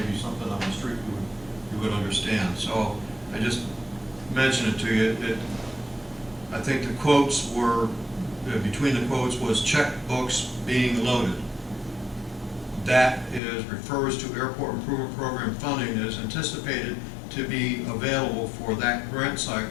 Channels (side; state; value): right; drops out; at 13.4 s